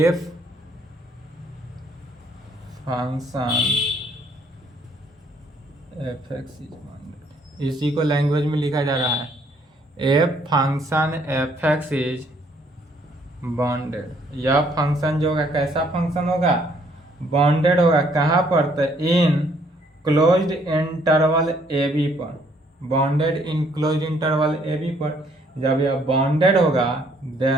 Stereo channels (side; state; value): both; normal; correlation 0.66